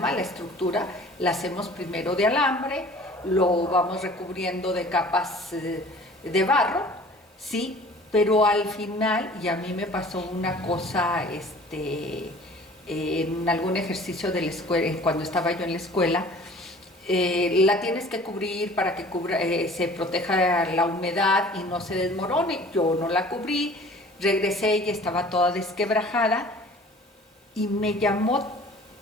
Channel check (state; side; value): normal; both; correlation 0.48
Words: la estructura, la hacemos primero de alambre, lo vamos recubriendo de capas de barro, ¿sí? Pero al final, y a mí me pasó una cosa, en algún ejercicio de la escuela, cuando estaba yo en la escuela, la tienes que cubrir para que se proteja la humedad y no se desmorone. Yo no la cubrí, regresé y estaba toda desquebrajada y me llamó